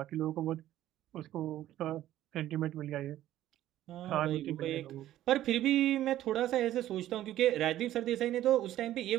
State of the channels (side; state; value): left; quieter; 13.4 dB